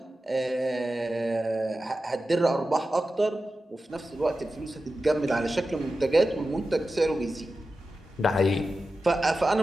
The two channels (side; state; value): both; normal; correlation 0.93